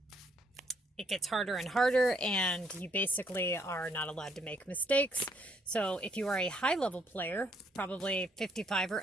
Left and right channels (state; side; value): normal; both; correlation 0.69